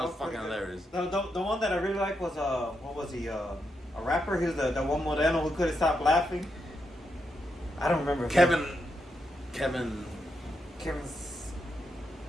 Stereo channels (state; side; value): normal; both; correlation 0.83